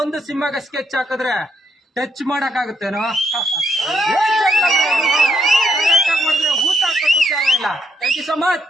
ಒಂದು ಸಿಂಹಗೆ ಸ್ಕೆಚ್ ಹಾಕಿದ್ರೆ ಟಚ್ ಮಾಡಕ್ ಆಗುತ್ತೇನೋ? ಊಟ ಇಲ್ಲ. Thank you so much.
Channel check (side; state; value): both; normal; correlation 0.76